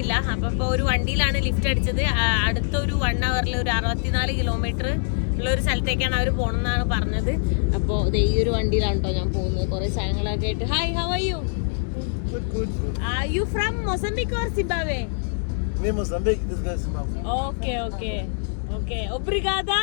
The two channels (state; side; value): silent; right; digital silence